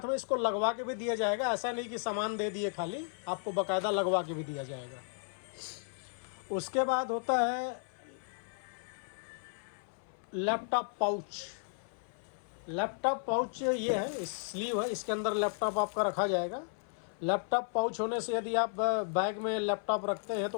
में इसको लगवा के भी दिया जाएगा। ऐसा नहीं कि सामान दे दिए खाली, आपको बाकायदा लगवा के भी दिया जाएगा। उसके बाद होता है लैपटॉप पाउच। लैपटॉप पाउच ये है, स्लीव है, इसके अंदर लैपटॉप आपका रखा जाएगा। लैपटॉप पाउच होने से यदि आप बैग में लैपटॉप रखते हैं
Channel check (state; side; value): silent; right; 55 dB below the other